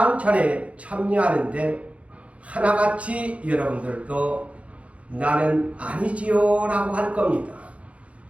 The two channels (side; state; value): left; late; 0.064 ms